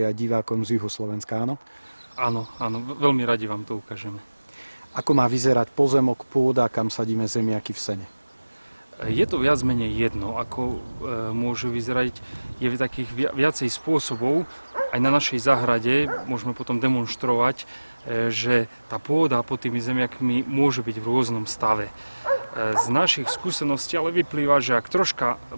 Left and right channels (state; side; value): inverted; both; correlation -1.00